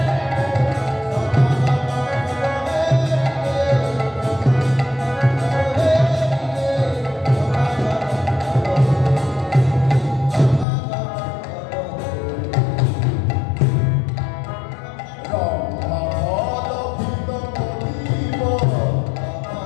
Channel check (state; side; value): drops out; right; at 10.7 s